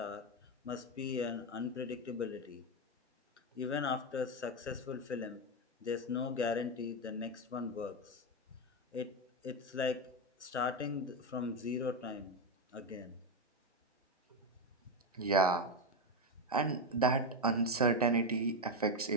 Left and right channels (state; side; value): normal; both; correlation 0.09